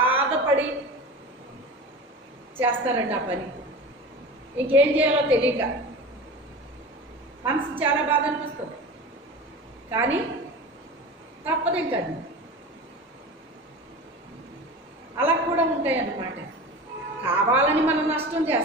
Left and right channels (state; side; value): normal; both; correlation 0.32